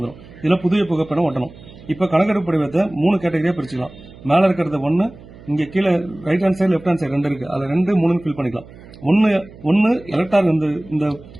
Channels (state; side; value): noise; right; hum, 20 dB below the sound